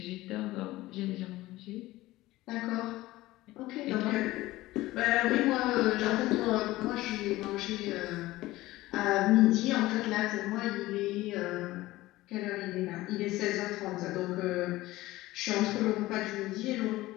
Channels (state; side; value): quieter; right; 17.8 dB